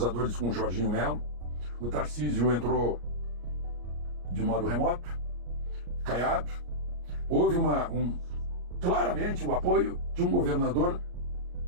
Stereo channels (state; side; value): late; left; 34 ms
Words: com o Jorginho Melo. O Tarcísio entrou de modo remoto. Caiado. Houve claramente o apoio de um governador